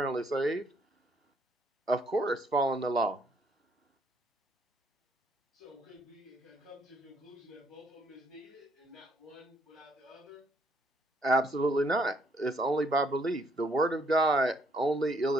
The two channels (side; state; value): both; normal; correlation 0.68